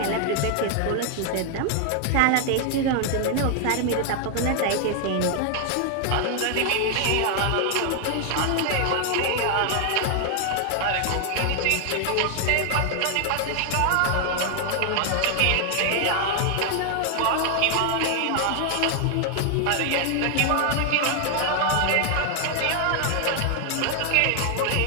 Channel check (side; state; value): both; different; correlation 0.00